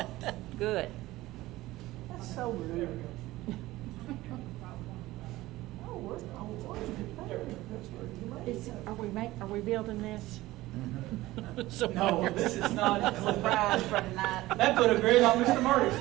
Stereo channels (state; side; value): quieter; left; 17.6 dB